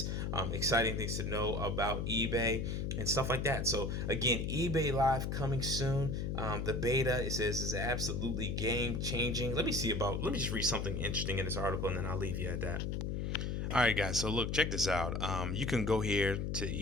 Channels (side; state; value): left; noise; hum, 1 dB below the sound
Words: exciting things to know about eBay and stuff like that. So again, eBay Live coming soon. The beta, it says, is absolutely game changing. Let me just read something interesting in this article, and then I'll leave you at that. All right, guys. So look, check this out. You can go here to